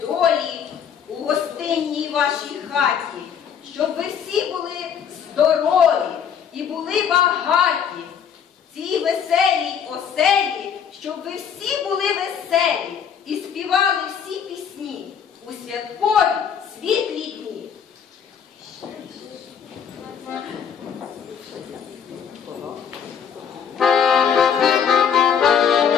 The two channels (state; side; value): quieter; right; 7.7 dB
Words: долі у гостинній вашій хаті, щоб ви всі були здорові і були багаті. В цій веселій оселі, щоб ви всі були веселі і співали всі пісні у святкові